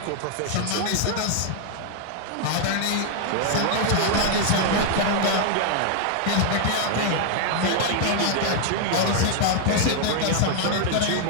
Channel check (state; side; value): different; both; correlation 0.00